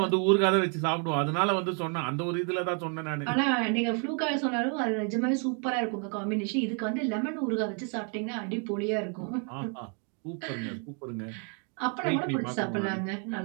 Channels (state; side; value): quieter; left; 40.0 dB